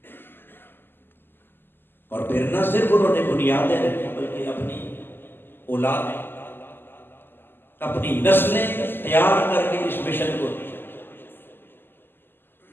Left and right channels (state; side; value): late; right; 0.098 ms